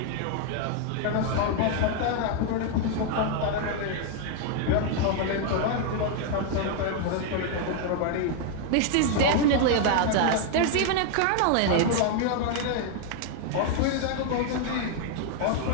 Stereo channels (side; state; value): both; different; correlation 0.00